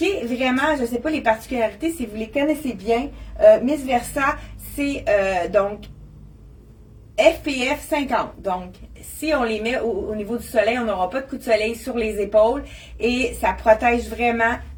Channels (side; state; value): both; identical; correlation 1.00